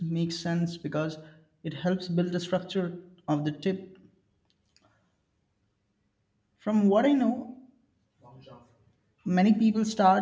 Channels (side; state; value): both; identical; correlation 1.00